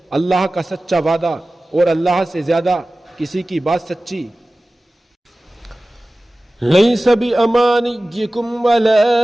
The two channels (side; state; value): both; normal; correlation 0.97